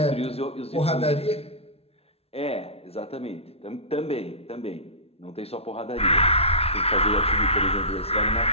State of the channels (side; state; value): right; late; 0.29 ms